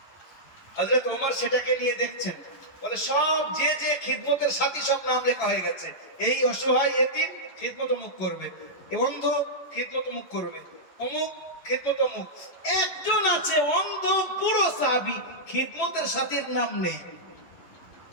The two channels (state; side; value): late; right; 11 ms